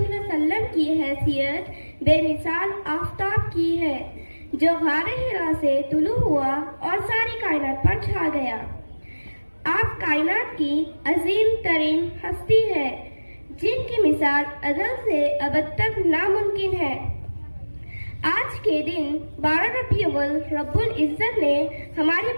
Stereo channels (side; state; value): both; inverted; correlation -1.00